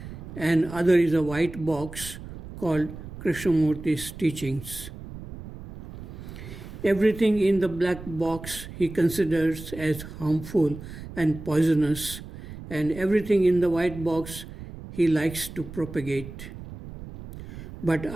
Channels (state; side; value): noise; right; rumble, 13 dB below the sound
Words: and other is a white box called Krishnamurti's teachings. Everything in the black box he considers as harmful and poisonous, and everything in the white box he likes to propagate. But